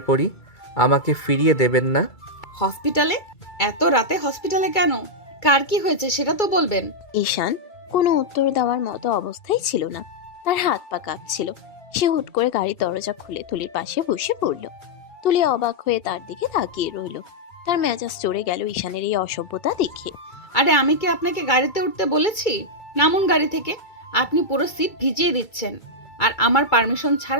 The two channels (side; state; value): right; late; 2.3 ms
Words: পড়ি, আমাকে ফিরিয়ে দেবেন না? হসপিটালে? এত রাতে হসপিটালে কেন? কার কি হয়েছে সেটা তো বলবেন। ঈশান কোনো উত্তর দেওয়ার মতো অবস্থায় ছিল না, তার হাত পা কাঁপছিল। সে হুট করে গাড়ির দরজা খুলে তুলির পাশে বসে পড়ল। তুলি অবাক হয়ে তার দিকে তাকিয়ে রইল। তার মেজাজ চড়ে গেল ঈশানের এই অসভ্যতা দেখে। আরে আমি কি আপনাকে গাড়িতে উঠতে বলেছি? নামুন গাড়ি থেকে। আপনি পুরো সিট ভিজিয়ে দিচ্ছেন, আর আমার পারমিশন